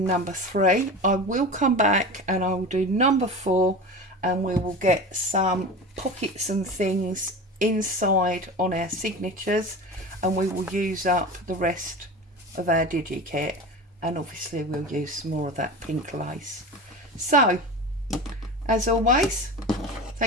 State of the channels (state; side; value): normal; both; correlation 0.30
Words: number 3. I will come back and I will do number 4, and we will get some pockets and things inside on our signatures, and we will use up the rest of our DigiKit, and obviously we'll use some more of that pink lace. So as always,